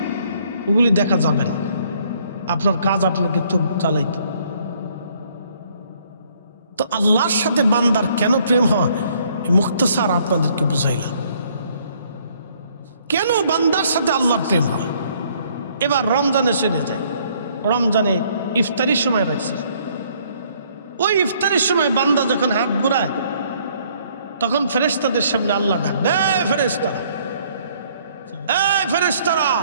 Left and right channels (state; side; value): inverted; both; correlation -0.64